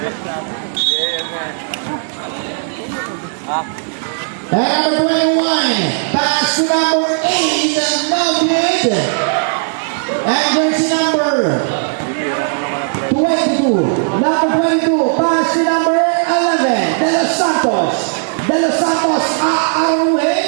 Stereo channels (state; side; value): silent; left; digital silence